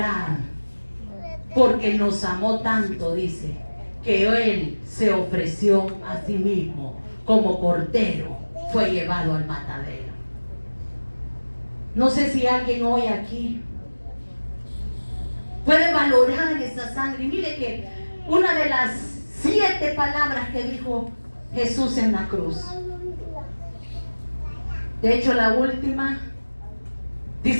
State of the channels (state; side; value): inverted; both; correlation -1.00